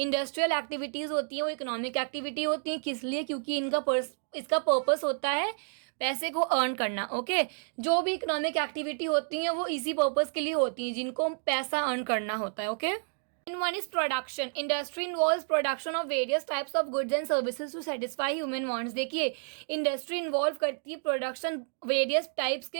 industrial activities होती हैं वो economic activity होती हैं. किस लिए? क्योंकि इसका purpose होता है पैसे को अर्न करना. ओके, जो भी इकोनॉमिक एक्टिविटी होती हैं वो इसी पर्पस के लिए होती हैं, जिनको पैसा अर्न करना होता है. Okay, one is production. Industry involves production of various types of goods and services to satisfy human wants. देखिए, इंडस्ट्री इन्वॉल्व करती है प्रोडक्शन वेरियस टाइप्स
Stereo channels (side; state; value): left; silent; 58 dB below the other